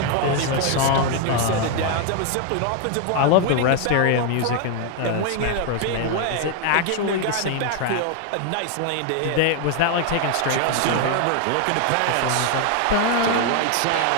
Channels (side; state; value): both; different; correlation 0.00